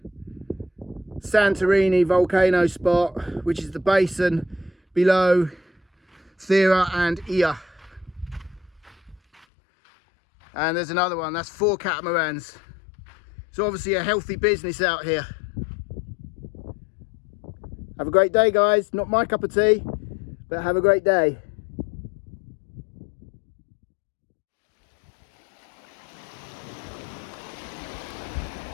Santorini volcano spot, which is the basin below Thera and Ia. And there's another one, that's 4 catamarans. It's obviously a healthy business out here. Have a great day, guys. Not my cup of tea, but have a great day.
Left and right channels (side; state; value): right; drops out; at 9.5 s